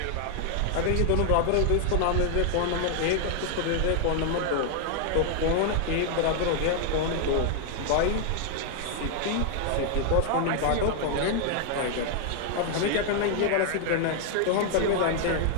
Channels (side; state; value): both; different; correlation 0.00